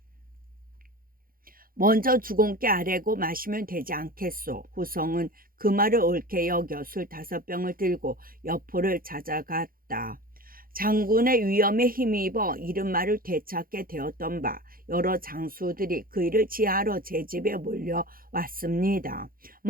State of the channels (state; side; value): late; left; 0.42 ms